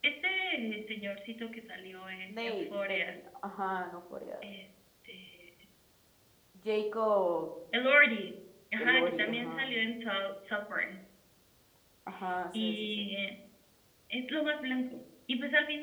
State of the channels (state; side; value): identical; both; correlation 1.00